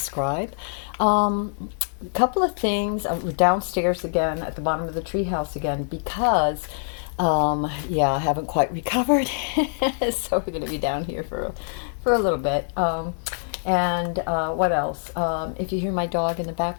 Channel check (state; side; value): silent; right; digital silence